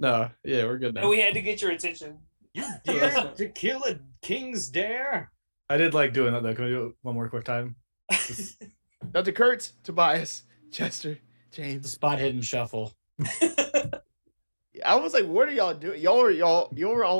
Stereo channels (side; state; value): both; inverted; correlation -1.00